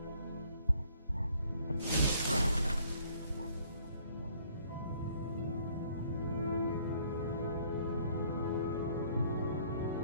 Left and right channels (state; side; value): inverted; both; correlation -0.61